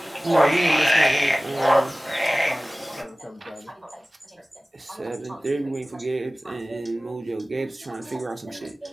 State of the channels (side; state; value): both; normal; correlation 0.97